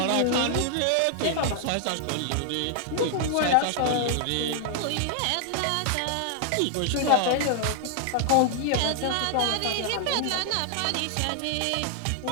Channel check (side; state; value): both; different; correlation 0.00